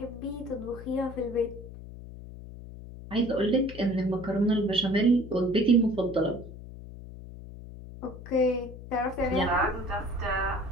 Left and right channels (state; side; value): noise; left; hum, 14 dB below the sound